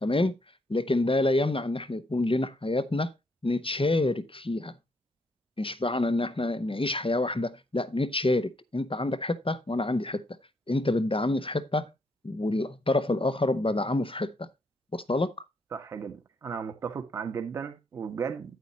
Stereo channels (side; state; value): both; normal; correlation 0.73